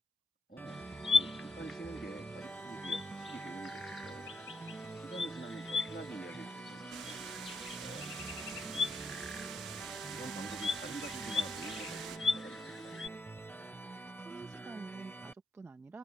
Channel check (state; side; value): normal; both; correlation 0.81